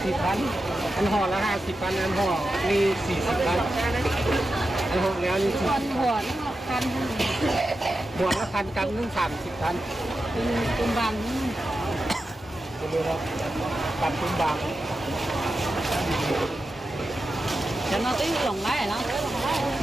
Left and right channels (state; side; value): normal; both; correlation 0.90